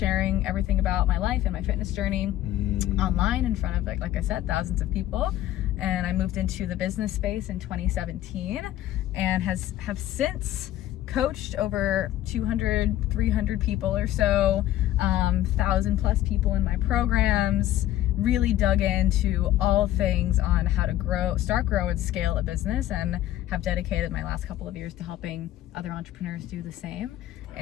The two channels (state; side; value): quieter; right; 13.7 dB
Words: everything about my life and my fitness journey online in front of, like I said, thousands of people. And I moved into the business space in 2017 and have since coached over 200, 300 people or so, 1,000 plus people in my programs, really dug into all things on how to start, grow, and scale a business, and have dedicated my last couple of years to helping other entrepreneurs do the same.